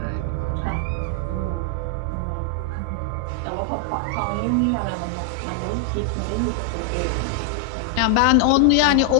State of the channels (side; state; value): both; different; correlation 0.00